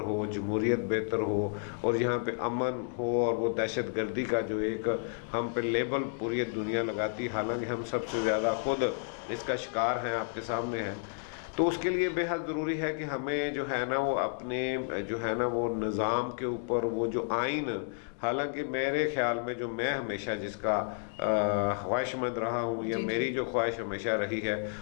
جمہوریت بہتر ہو، اور یہاں پہ امن ہو، اور وہ دہشت گردی کا جو ایک ہم پہ لیبل پوری دنیا لگاتی، حالانکہ ہم سب سے زیادہ خود اس کا شکار ہیں، آپ کے سامنے ہیں. تو اس کے لیے بے حد ضروری ہے کہ ہمیں جو ہے نا وہ اپنے جو ہے نا وہ نظام کے اوپر وہ جو آئین، حالانکہ میرے خیال میں جو میں ہمیشہ جس کا خواہش مند رہا ہوں، یا میری جو خواہش ہمیشہ رہی ہے،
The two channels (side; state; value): right; silent; digital silence